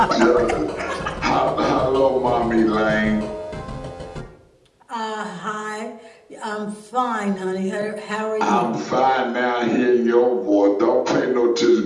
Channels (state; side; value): identical; both; correlation 1.00